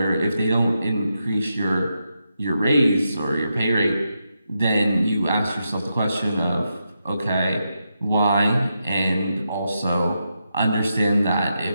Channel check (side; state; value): both; inverted; correlation -0.85